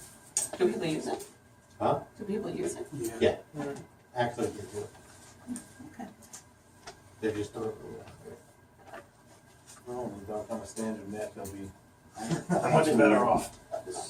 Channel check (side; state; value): both; identical; correlation 1.00